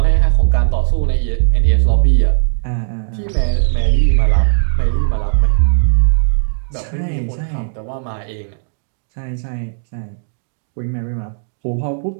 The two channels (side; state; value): left; silent; digital silence